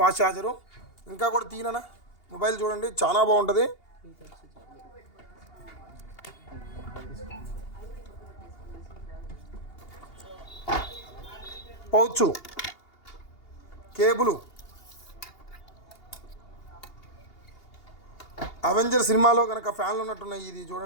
చార్జరు. ఇంకా కూడా తీయనా మొబైల్ చూడండి చాలా బాగుంటుంది. పౌచ్, కేబుల్, అవెంజర్ సినిమాలో కనుక ఫ్యాన్లు ఉన్నట్టున్నాయి. ఇది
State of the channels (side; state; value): right; late; 2.8 ms